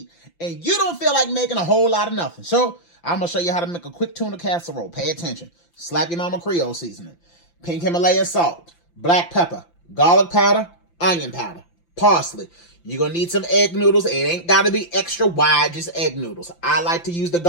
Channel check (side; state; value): right; late; 5.9 ms